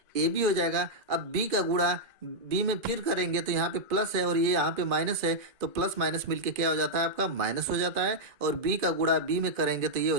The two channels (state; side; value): late; left; 2.4 ms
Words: ab हो जाएगा। अब b का गुणा b में फिर करेंगे तो यहाँ पे प्लस है और ये यहाँ पे माइनस है, तो प्लस माइनस मिलके क्या हो जाता है आपका माइनस हो जाता है, और b का गुणा b में करेंगे तो ये हो